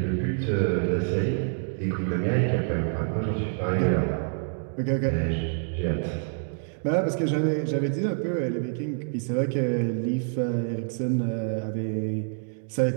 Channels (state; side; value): silent; left; 60 dB below the other